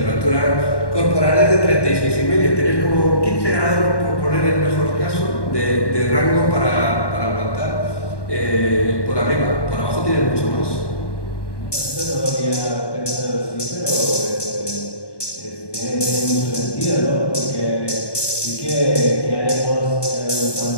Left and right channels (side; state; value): right; late; 1.2 ms